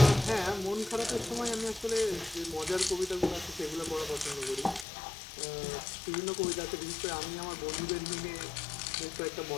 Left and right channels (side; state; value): right; drops out; at 4.9 s